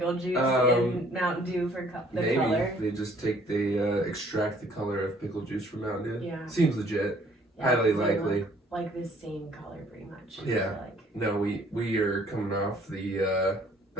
juice in Mountain Dew for the maybe. color? They just extract the color of pickle juice from Mountain Dew. Yeah. Seems legit. Yeah, Highly likely. Like the same color, pretty much. Yeah. No, we are coming off the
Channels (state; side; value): normal; both; correlation 0.59